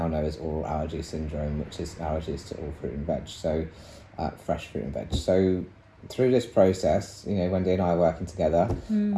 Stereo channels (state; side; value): identical; both; correlation 1.00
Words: know as oral allergy syndrome, which is allergies to all fruit and veg, so fresh fruit and veg. So through this process, Wendy and I are working together,